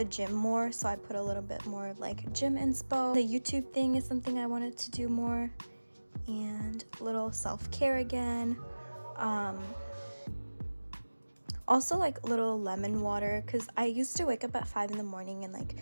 gym more, so I put a little bit more of like gym inspo. The YouTube thing is something I wanted to do more, and a little self-care again. Also like little lemon water, because I used to wake up at 5 in the morning and like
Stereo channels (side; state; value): both; inverted; correlation -1.00